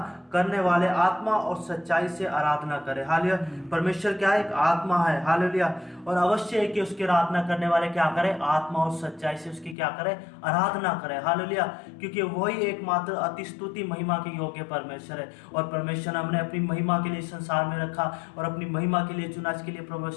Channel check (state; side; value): drops out; right; at 9.8 s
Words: करने वाले आत्मा और सच्चाई से आराधना करें। हालेलुया। परमेश्वर क्या है, एक आत्मा है। हालेलुया। और अवश्य है कि उसकी आराधना करने वाले क्या करें, आत्मा और सच्चाई से उसकी क्या करें, आराधना करें। हालेलुया। क्योंकि वही एकमात्र अति स्तुति महिमा के योग्य परमेश्वर है और परमेश्वर ने हमने अपनी महिमा के लिए संसार में रखा और अपनी महिमा के लिए चुना। इसके लिए